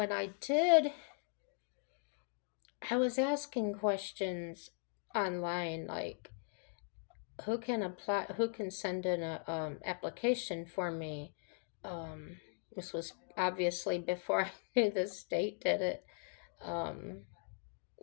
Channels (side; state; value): right; silent; 52 dB below the other